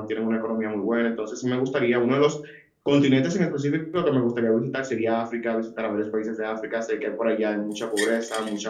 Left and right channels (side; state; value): both; identical; correlation 1.00